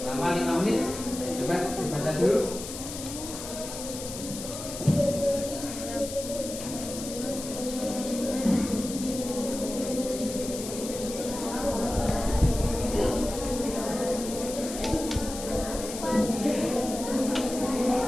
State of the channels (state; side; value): noise; left; hiss, 9 dB below the sound